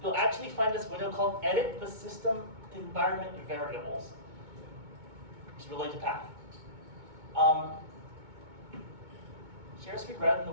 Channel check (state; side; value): late; left; 2.2 ms